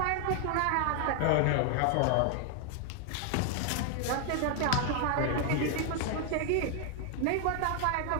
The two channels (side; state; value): both; different; correlation 0.00